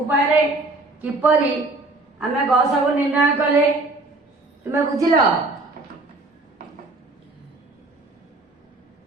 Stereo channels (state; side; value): quieter; left; 3.0 dB